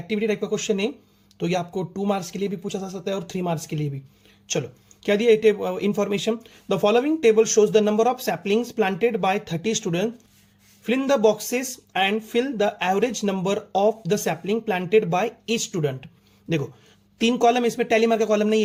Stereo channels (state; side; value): identical; both; correlation 1.00